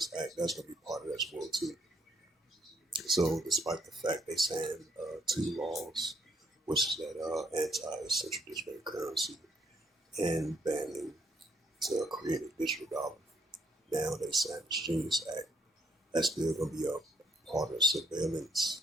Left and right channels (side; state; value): both; normal; correlation 0.70